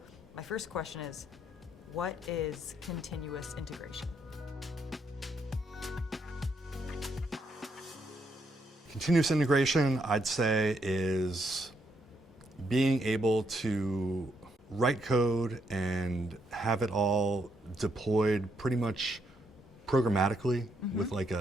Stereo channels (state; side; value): normal; both; correlation 0.76